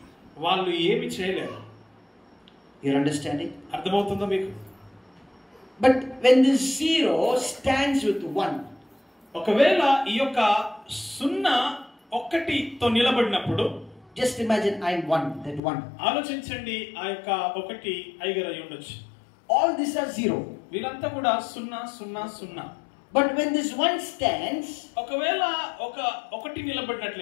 వాళ్ళు ఏమి చేయలేరు. You're understanding? అర్థమవుతుందా మీకు? But when this zero stands with one, ఒకవేళ ఈ యొక్క సున్నా ఒకటితో నిలబడినప్పుడు, just imagine I'm one, that one. ఆలోచించండి, ఆ యొక్క ఒకటి ఐగర్ అయి ఉండొచ్చు. All these are zero. వీళ్ళంతా కూడా సున్నా సున్నా సున్నా. But when this one stands, ఒకవేళ ఒకటి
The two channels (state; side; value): drops out; right; at 15.6 s